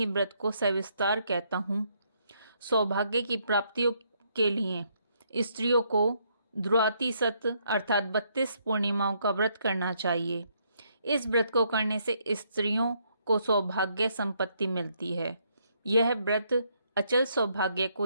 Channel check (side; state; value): both; inverted; correlation -0.73